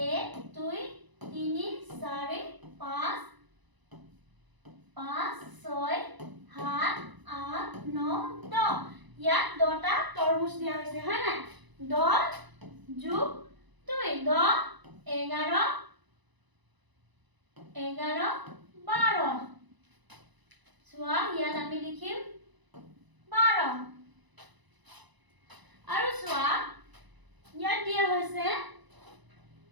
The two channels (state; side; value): late; left; 1.0 ms